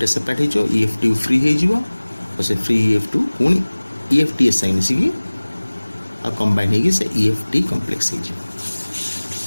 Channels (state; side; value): inverted; both; correlation -1.00